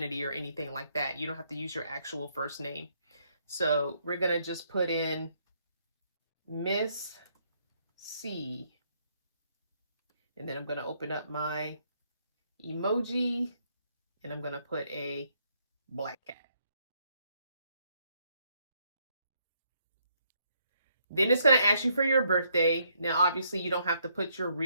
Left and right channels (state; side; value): inverted; both; correlation -0.72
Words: or anything like that. You don't have to use your actual first name. So we're going to just put in Miss C. And then I'm going to open up my emoji and I'm going to put a black cat. Then it's going to ask you for your birthday. Now, obviously, you don't have to put your